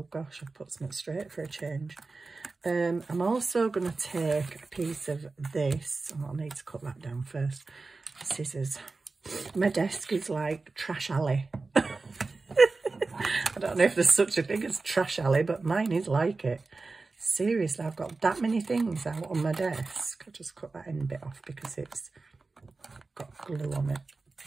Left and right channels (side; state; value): left; quieter; 3.8 dB